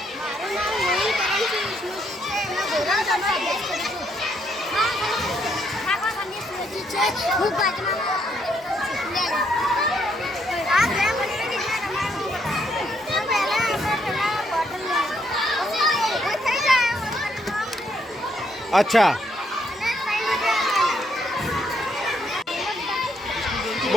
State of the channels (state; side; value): normal; both; correlation 0.73